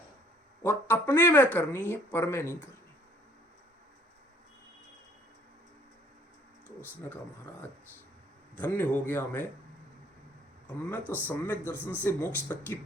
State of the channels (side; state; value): both; normal; correlation 0.59